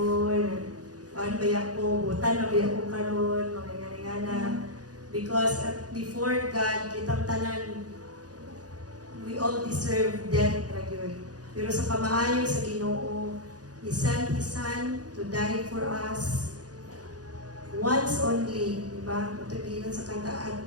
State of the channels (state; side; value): late; left; 0.68 ms